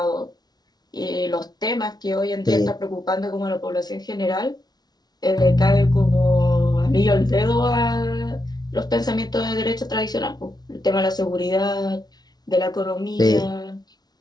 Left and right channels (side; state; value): right; late; 0.19 ms